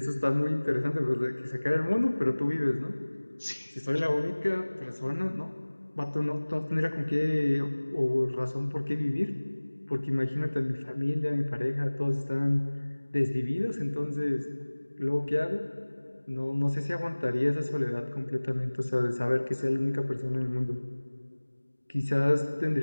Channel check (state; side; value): inverted; both; correlation -1.00